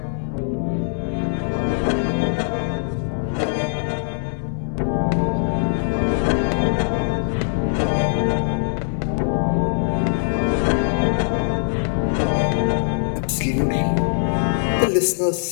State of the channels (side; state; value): right; silent; digital silence